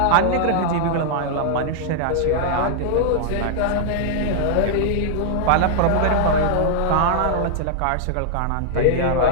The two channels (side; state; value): both; different; correlation -0.01